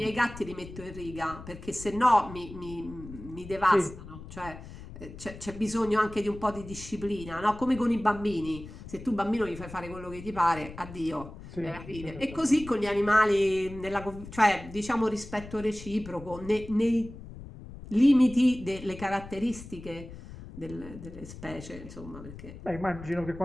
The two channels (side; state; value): left; noise; rumble, 14 dB below the sound